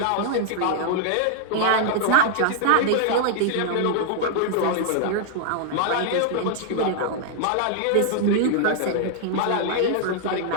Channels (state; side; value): different; both; correlation 0.00